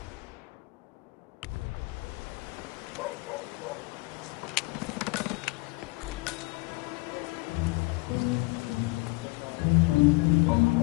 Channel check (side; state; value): right; quieter; 25.8 dB